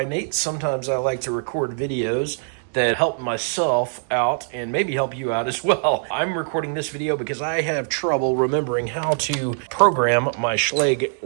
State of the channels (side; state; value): left; silent; digital silence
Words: sometimes I like to record videos that help myself out and maybe help you out as well. I'm recording this video because I have trouble remembering how to program my Schlage